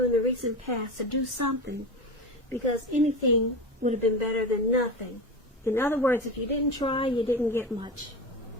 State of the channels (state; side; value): normal; both; correlation 0.25